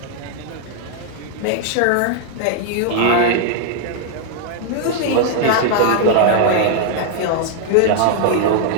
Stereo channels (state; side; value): different; both; correlation 0.00